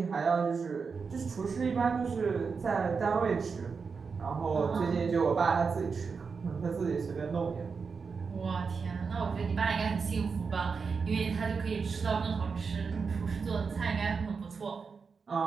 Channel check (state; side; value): quieter; left; 5.3 dB